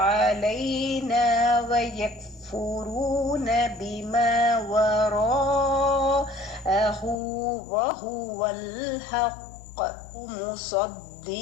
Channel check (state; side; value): drops out; right; at 7.2 s